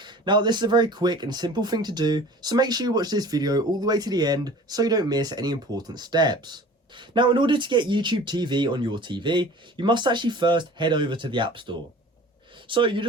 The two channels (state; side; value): normal; both; correlation 0.44